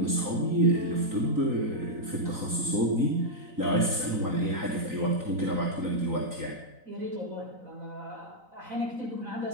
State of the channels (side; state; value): left; late; 4.0 ms